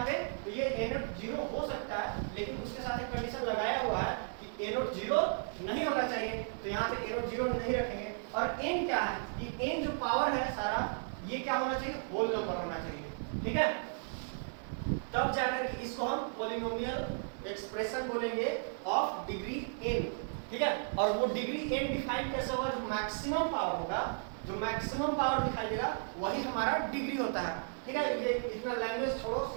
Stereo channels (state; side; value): silent; left; digital silence